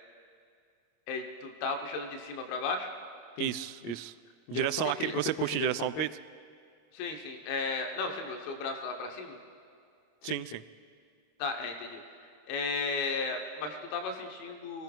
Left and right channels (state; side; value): late; right; 26 ms